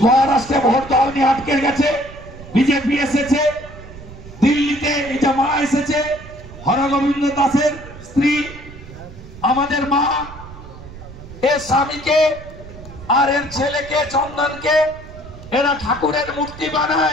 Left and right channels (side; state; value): right; noise; rumble, 16 dB below the sound